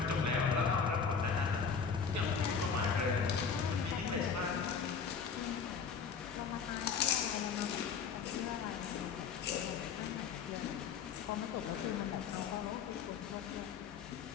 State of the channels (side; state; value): right; quieter; 6.2 dB